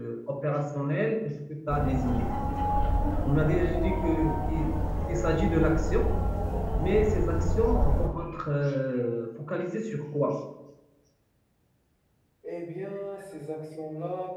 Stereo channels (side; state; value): both; identical; correlation 1.00